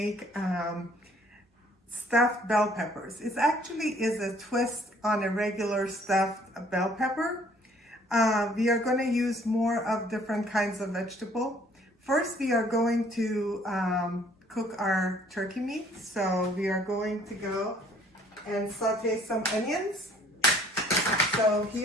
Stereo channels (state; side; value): normal; both; correlation 0.59